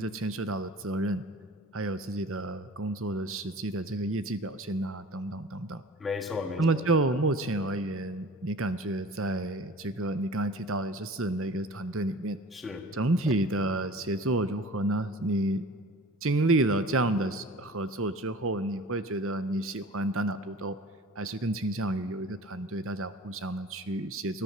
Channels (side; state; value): both; normal; correlation 0.42